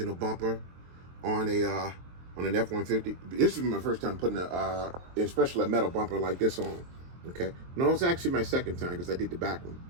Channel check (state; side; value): late; left; 23 ms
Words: a bumper on an F-150. This is my first time putting especially a metal bumper like this on. Okay. No, it's actually my second time because I did the back one.